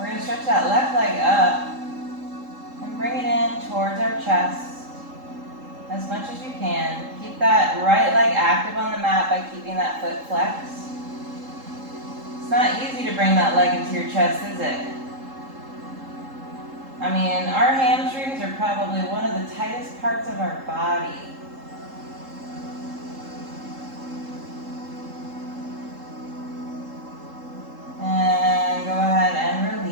going to stretch that left leg up and bring it in towards our chest. As much as you can. Keep that right leg active on the mat by keeping that foot flexed. It's not easy to bring that leg into your chest, is it? I mean, our hamstrings are probably one of the tightest parts of our body. And go ahead and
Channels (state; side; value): late; left; 3.7 ms